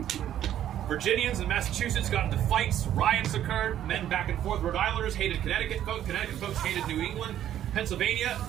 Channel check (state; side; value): quieter; left; 11.3 dB